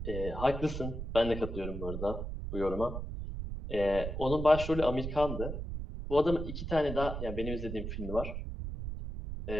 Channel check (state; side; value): noise; right; rumble, 6 dB below the sound